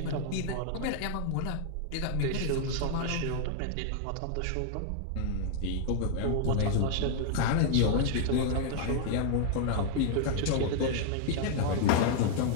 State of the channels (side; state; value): both; different; correlation 0.00